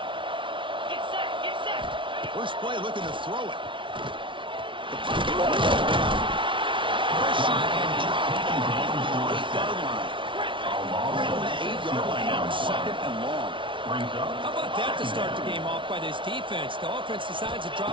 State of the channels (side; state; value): left; late; 0.25 ms